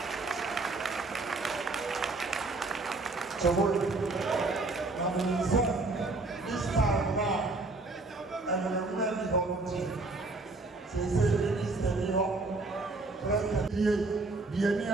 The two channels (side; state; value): left; quieter; 3.3 dB